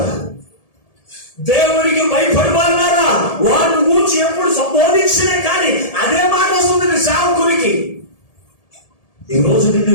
దేవునికి భయపడువారులారా, వారిని గూర్చి ఎప్పుడు సంబోధించినా కానీ అదే మాట వస్తుంది సేవకునికి. ఈ రోజు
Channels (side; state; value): right; late; 1.7 ms